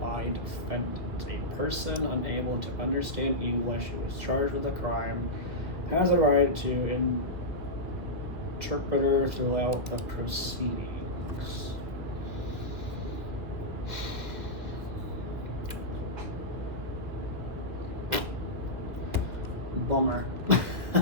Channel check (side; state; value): left; late; 2.2 ms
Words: defendant. A person unable to understand English who is charged with a crime has a right to interpreter throughout the proceedings. Bummer.